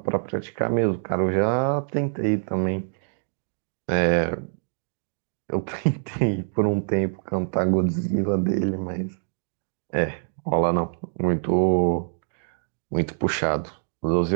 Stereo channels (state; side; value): silent; left; digital silence